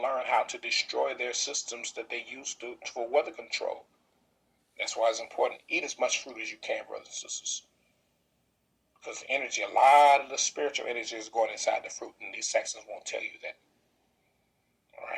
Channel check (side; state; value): both; identical; correlation 1.00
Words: learn how to destroy their systems that they use for weather control. That's why it's important. Eat as much fruit as you can, brothers and sisters. Because the energy, a lot of the spiritual energy is going inside the fruit. And these Saxons won't tell you that. All